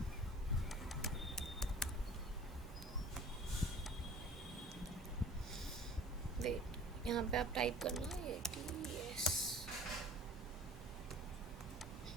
वेट, यहाँ पे आप टाइप करना ATS,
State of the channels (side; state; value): both; normal; correlation 0.46